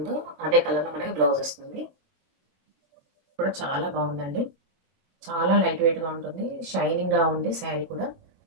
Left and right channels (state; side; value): late; left; 22 ms